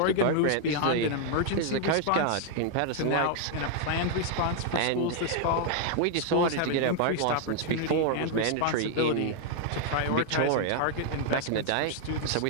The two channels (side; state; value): both; different; correlation 0.00